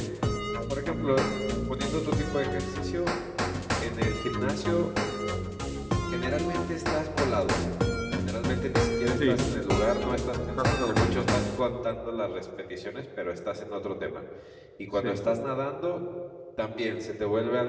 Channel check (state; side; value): identical; both; correlation 1.00